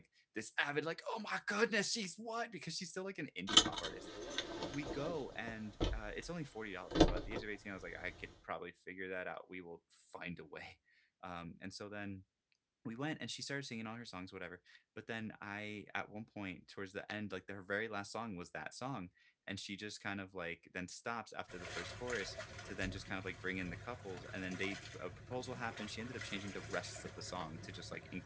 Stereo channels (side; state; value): both; identical; correlation 1.00